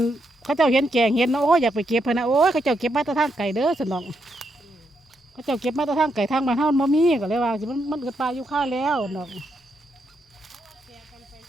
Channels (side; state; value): both; normal; correlation 0.80